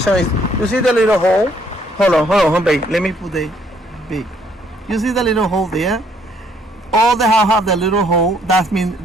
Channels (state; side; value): normal; both; correlation 0.66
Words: is. You see the little hole? Hold on, babe. Let me put the big. You see the little hole there? All the house have the little hole. That means